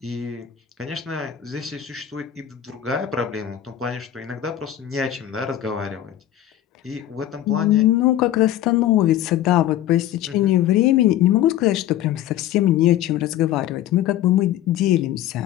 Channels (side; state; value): right; quieter; 12.1 dB